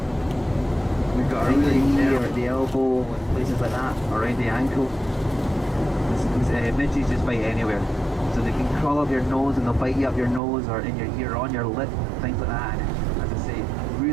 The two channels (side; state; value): left; drops out; at 10.4 s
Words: we've got a really knee or at the elbow and places like that, around the ankle. Midges just bite anywhere, so they can crawl up your nose and they'll bite you up your nose or in your ear, on your lip, things like that. And as I say,